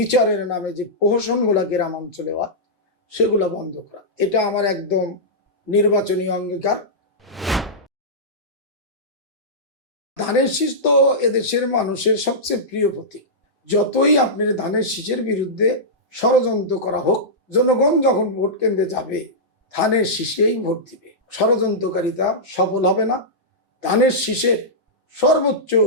নামে যে প্রহসনগুলা গ্রাম অঞ্চলে হয়, সেগুলো বন্ধ করা, এটা আমার একদম নির্বাচনী অঙ্গীকার। ধানের শীষ তো এদেশের মানুষের সবচেয়ে প্রিয় প্রতীক। যতই আপনার ধানের শীষের বিরুদ্ধে ষড়যন্ত্র করা হোক, জনগণ যখন ভোট কেন্দ্রে যাবে ধানের শীষেই ভোট দিবে। ষড়যন্ত্রকারিতা সফল হবে না, ধানের শীষের সর্বোচ্চ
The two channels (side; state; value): both; normal; correlation -0.13